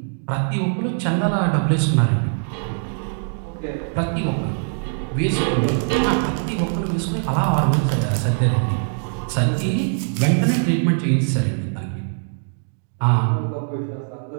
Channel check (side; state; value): left; silent; 64 dB below the other